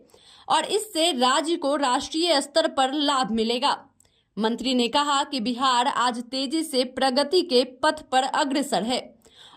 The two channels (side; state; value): both; identical; correlation 1.00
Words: और इससे राज्य को राष्ट्रीय स्तर पर लाभ मिलेगा। मंत्री ने कहा कि बिहार आज तेजी से प्रगति के पथ पर अग्रसर है